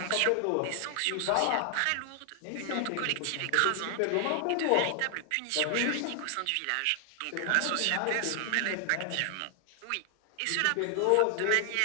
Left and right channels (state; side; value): different; both; correlation 0.00